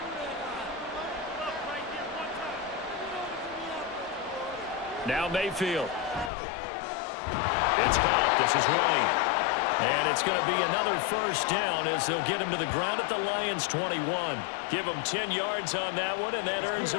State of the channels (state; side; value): drops out; right; at 6.3 s